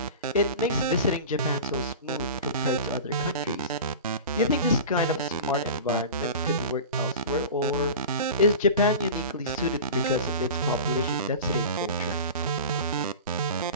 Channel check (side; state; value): both; inverted; correlation -0.34